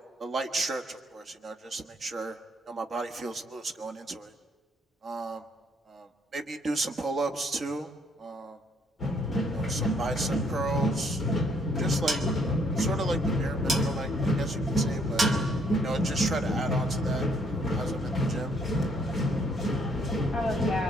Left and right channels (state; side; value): normal; both; correlation 0.67